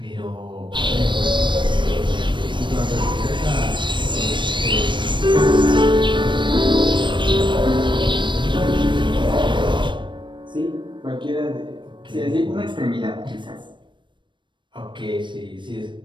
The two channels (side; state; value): left; late; 0.23 ms